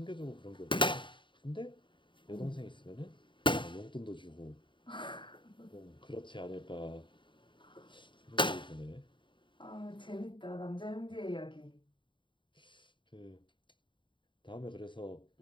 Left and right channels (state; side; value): late; right; 0.23 ms